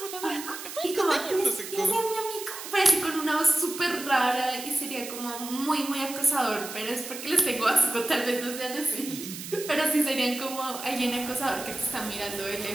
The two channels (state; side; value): noise; right; hiss, 10 dB below the sound